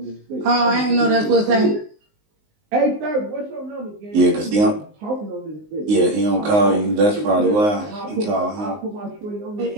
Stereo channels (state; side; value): late; left; 19 ms